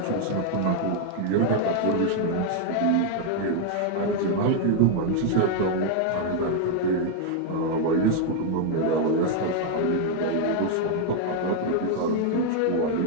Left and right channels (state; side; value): different; both; correlation 0.00